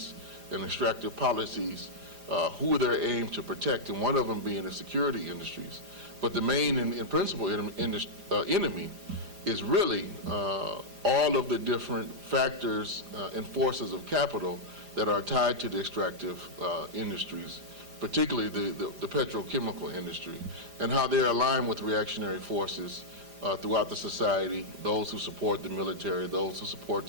and extractive policies, who they're aimed to protect, and one of them being the security industries. But the main and principal enemy is really all of the different factors and forces of capital that are tied to the extractive industries, particularly the petrochemical industry, and how they're aligned with reactionary forces throughout the society, those who support the military, those who support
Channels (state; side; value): late; left; 4.9 ms